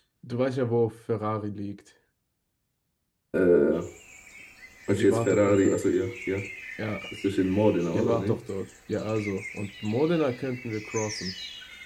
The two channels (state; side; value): identical; both; correlation 1.00